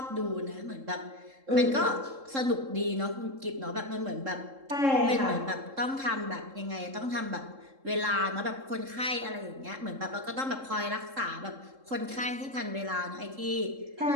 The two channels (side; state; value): left; late; 3.7 ms